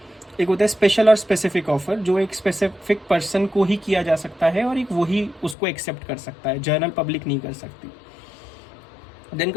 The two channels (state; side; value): drops out; right; at 5.6 s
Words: एक होता है स्पेशल और स्पेसिफिक ऑफर, जो एक स्पेसिफिक पर्सन को ही किया जा सकता है और एक वही उसको एक्सेप्ट कर सकता है, जर्नल पब्लिक नहीं कर सकती। Then